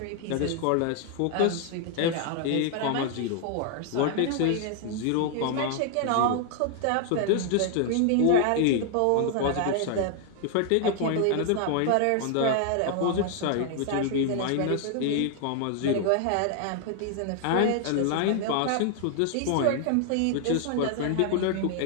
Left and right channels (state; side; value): different; both; correlation 0.00